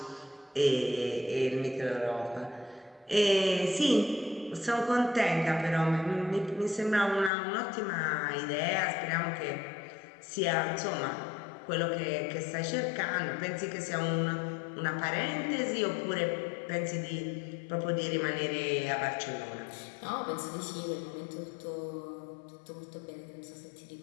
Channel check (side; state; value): right; drops out; at 7.3 s